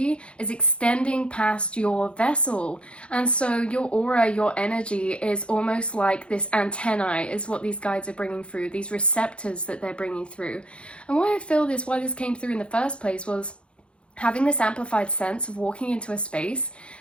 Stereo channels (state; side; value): late; right; 0.058 ms